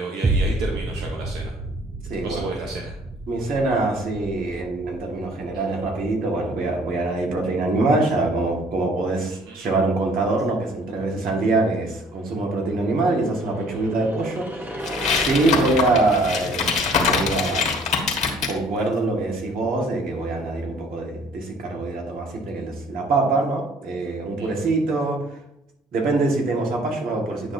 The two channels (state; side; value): normal; both; correlation 0.57